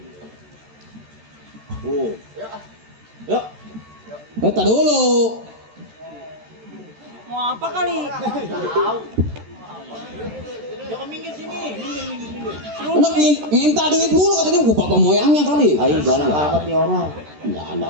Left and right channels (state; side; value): late; left; 13 ms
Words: Oh. Yuk. Bentar dulu. Mau apa kali? Jangan minggir sini, minggir. Anak minta duit mulu katanya gua papa moyangnya kali. Ayo jalan amat nih orang. Enggak ada.